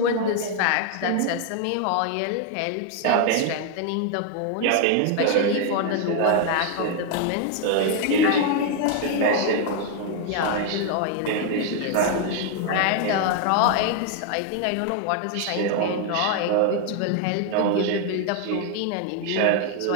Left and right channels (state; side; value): different; both; correlation 0.00